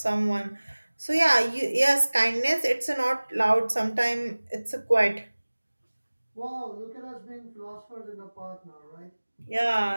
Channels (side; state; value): both; inverted; correlation -1.00